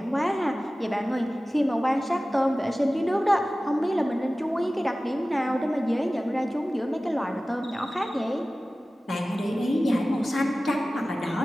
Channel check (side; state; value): both; normal; correlation 0.96